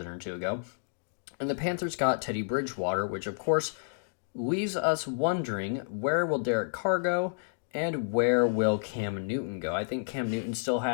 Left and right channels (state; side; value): silent; right; digital silence